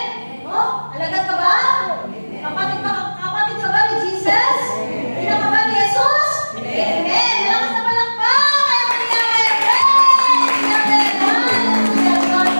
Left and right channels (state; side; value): inverted; both; correlation -1.00